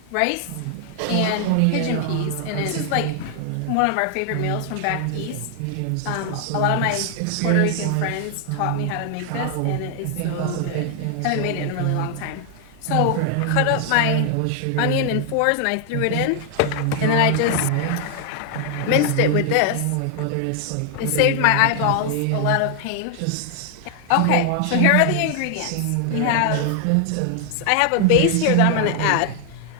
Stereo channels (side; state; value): both; different; correlation 0.00